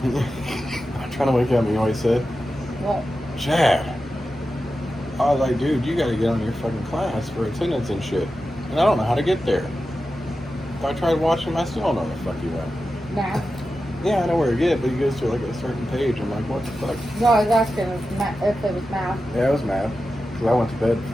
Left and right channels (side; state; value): both; normal; correlation 0.92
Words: I'm trying to wake up, you know what he said? What? Chad. I was like, dude, you gotta get on your fucking class for attendance and shit. And I don't know how to get there. If I tried watching him, I still don't know where the fuck he went. Math? Yeah, I know where to get, but he goes to like a certain page. I'm like, what the fuck? No, I was asking if it was math. Yeah, it was math. Because I went to bed